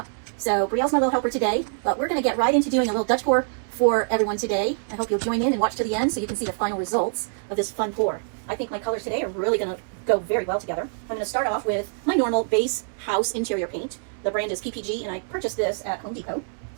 So Brielle's my little helper today, but we're going to get right into doing a little Dutch pour for everyone today. I hope you'll join in and watch to the end so you can see the final results of this fun pour. I think my colors today are really going to go very well together. I'm going to start off with my normal base house interior paint. The brand is PPG, and I purchased this at Home Depot.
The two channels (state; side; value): silent; left; 62 dB below the other